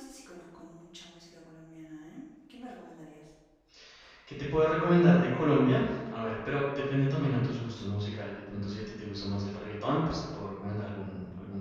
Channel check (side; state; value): both; identical; correlation 1.00